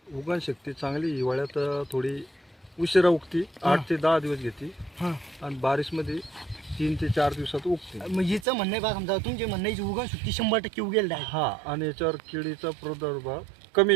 उगवण शक्ती चांगली. हिवाळ्यात थोडी उशिरा उगती, 8 ते 10 दिवस घेते हां, आणि बारिशमध्ये 3 ते 4 दिवसात उगते. मग हिचं म्हणणं आहे बा, समजा तुमचे म्हणणं याची उगण शक्ती 100% उगेल आहे. हा, आणि याच्यावर किडीचा प्रादुर्भाव कमी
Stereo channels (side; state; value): left; drops out; at 8.5 s